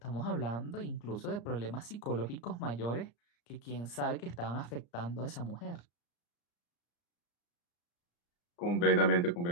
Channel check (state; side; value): late; right; 34 ms